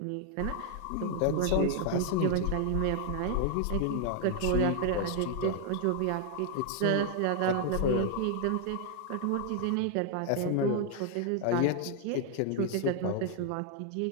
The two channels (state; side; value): different; both; correlation 0.00